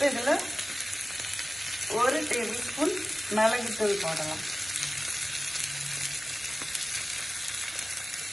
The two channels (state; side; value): normal; both; correlation 0.96